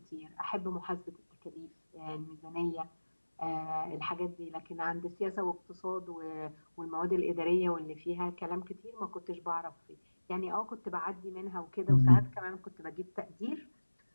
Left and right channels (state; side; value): inverted; both; correlation -1.00